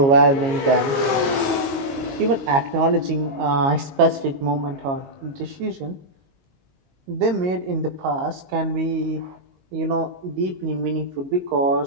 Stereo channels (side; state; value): left; late; 22 ms